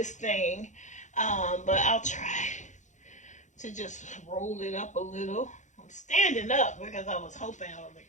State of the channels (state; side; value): late; right; 0.35 ms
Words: thing. But I'll try to just roll it up a little. I'm standing up because I was hoping